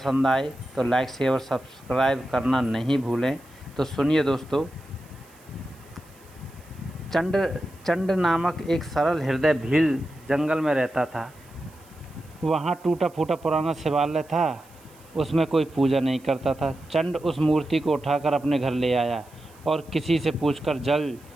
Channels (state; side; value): noise; right; hiss, 28 dB below the sound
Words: आए तो लाइक शेयर और सब्सक्राइब करना नहीं भूलें। तो सुनिए दोस्तों। चंड चंड नामक एक सरल हृदय भील जंगल में रहता था। वहाँ टूटा फूटा पुराना शिवालय था। उसमें कोई पूजा नहीं करता था। चंड उस मूर्ति को उठाकर अपने घर ले आया और किसी से पूछकर जल,